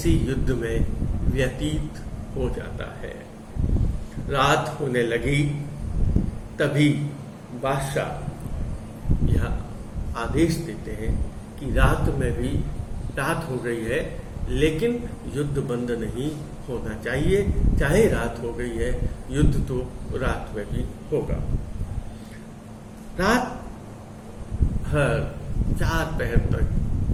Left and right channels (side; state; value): both; identical; correlation 1.00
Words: युद्ध में व्यतीत हो जाता है। रात होने लगी तभी बादशाह यह आदेश देते हैं कि रात में भी रात हो गई है लेकिन युद्ध बंद नहीं होना चाहिए, चाहे रात हो गई है, युद्ध तो रात में भी होगा। रात भर 4 पहर तक